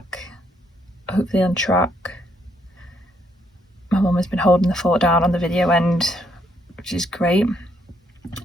hopefully on track. My mum has been holding the fort down on the video end, which is great.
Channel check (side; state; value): both; normal; correlation 0.72